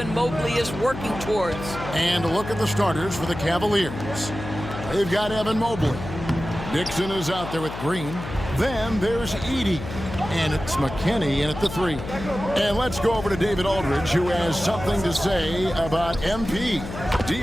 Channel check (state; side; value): noise; left; hum, 9 dB below the sound